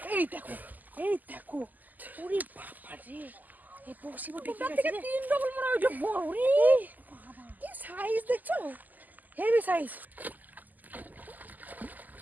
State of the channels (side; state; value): left; late; 0.083 ms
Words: এই দেখো ওরে বাবা রে, এই পশিবো দেখে গেছে রে, 3 ডবল মনে হয় বড় রে বাবা, কি সাইজ দেখছো, হেভি সাইজ।